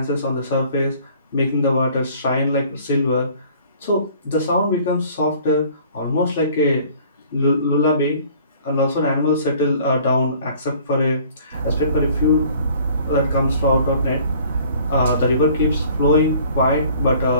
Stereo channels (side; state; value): both; inverted; correlation -0.53